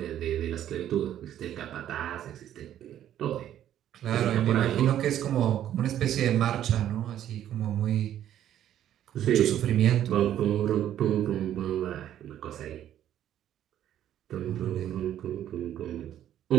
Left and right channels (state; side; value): quieter; left; 11.3 dB